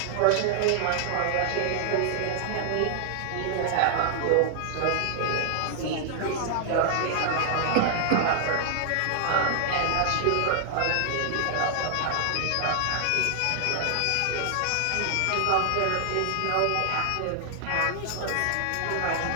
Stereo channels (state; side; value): different; both; correlation -0.01